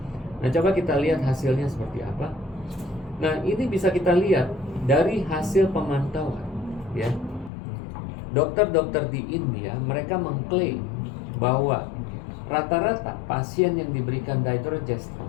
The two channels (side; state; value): right; drops out; at 7.5 s